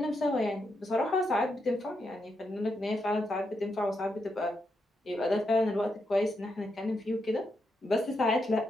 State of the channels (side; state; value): both; normal; correlation 0.82